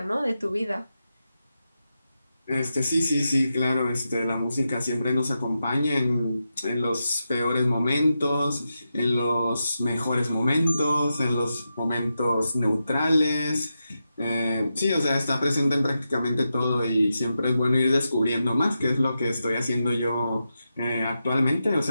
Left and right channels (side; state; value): both; inverted; correlation -0.88